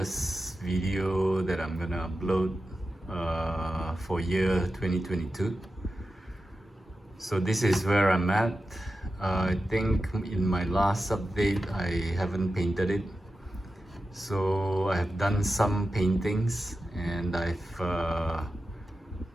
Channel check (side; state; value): both; normal; correlation 0.92